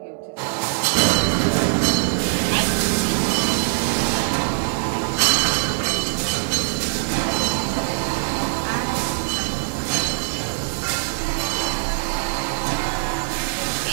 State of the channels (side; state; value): left; silent; digital silence